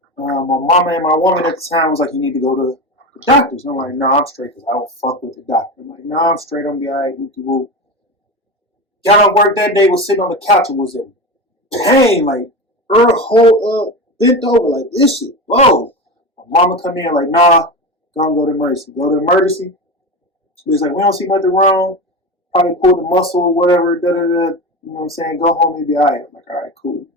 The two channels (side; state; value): both; normal; correlation 0.23